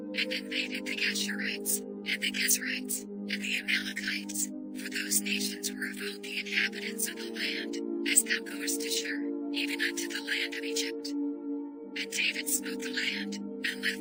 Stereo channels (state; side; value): identical; both; correlation 1.00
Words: invaded the Geshurites, and the Gezrites, and the Amalekites, for those nations were of old the inhabitants of the land, as thou goest to Shur, even unto the land of Egypt. And David smote the land, and